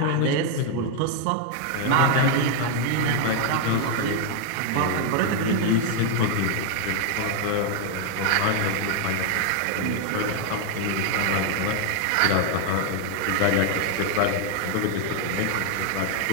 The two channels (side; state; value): both; different; correlation 0.00